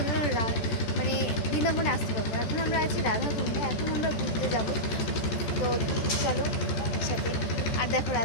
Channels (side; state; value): right; late; 14 ms